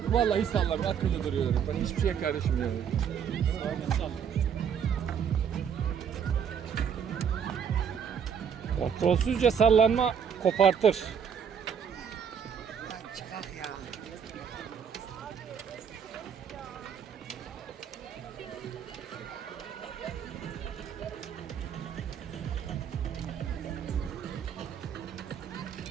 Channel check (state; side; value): quieter; left; 7.5 dB